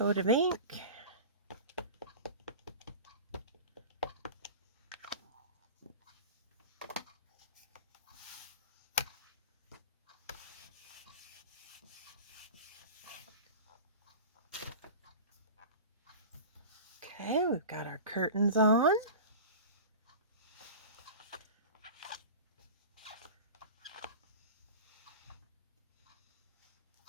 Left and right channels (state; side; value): inverted; both; correlation -0.34